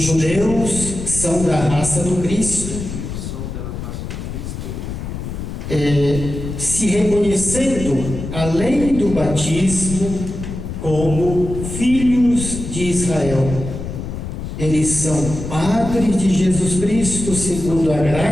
judeus são da raça do Cristo, se reconhecendo, além do batismo, como filhos de Israel. Eles são padres de Jesus Cristo segundo a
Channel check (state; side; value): noise; left; rumble, 7 dB below the sound